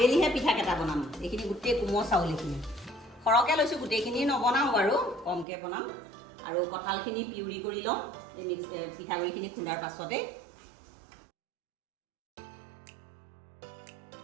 পিঠাকেইটা বনাম। এইখিনি গোটেই কোমল চাউল, এইখিনি সৰহকৈ লৈছোঁ, গোটেইখিনি নবনাওঁ বাৰু, কমকৈ বনাম। আৰু কঁঠালখিনি পিউৰি কৰি লওঁ এই পিঠাগুড়িখিনি খুন্দাৰ পাছতে।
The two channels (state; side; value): drops out; left; at 5.5 s